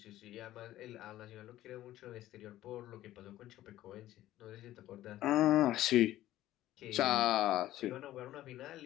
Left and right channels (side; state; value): right; quieter; 14.4 dB